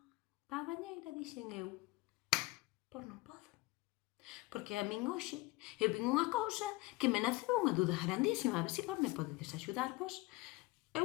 a bañeira dixen eu, pois non podo. Porque a min hoxe eu vin unha cousa que me naceu unha duda grandísima. A ver se vos me podedes axudarvos.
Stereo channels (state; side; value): quieter; right; 21.4 dB